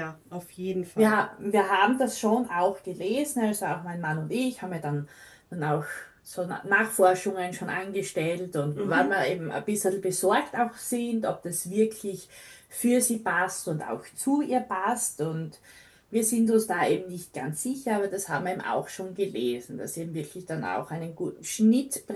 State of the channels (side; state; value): both; identical; correlation 1.00